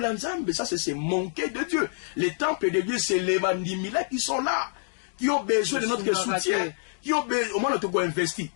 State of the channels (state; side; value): silent; right; digital silence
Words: ensemble, ça c'est manquer de Dieu. Les temples de Dieu, c'est les bandimila qui sont là, qui ont besoin de notre soutien, qui ont besoin, au moins notre go investir.